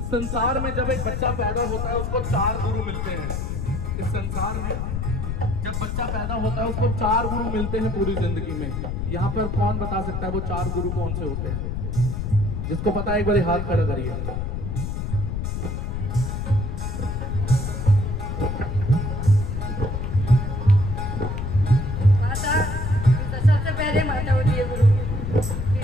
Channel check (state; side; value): noise; left; rumble, 3 dB below the sound